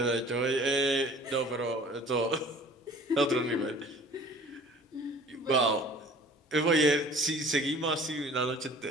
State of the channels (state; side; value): normal; both; correlation 0.48